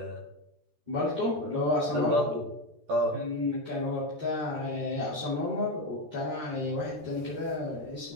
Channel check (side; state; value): left; late; 13 ms